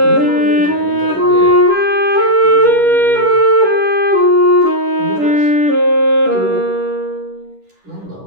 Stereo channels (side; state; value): left; late; 10 ms